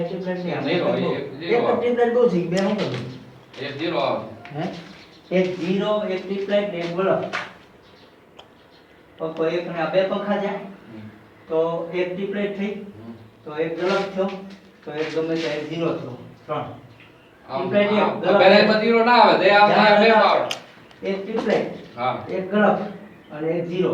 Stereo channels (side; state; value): both; identical; correlation 1.00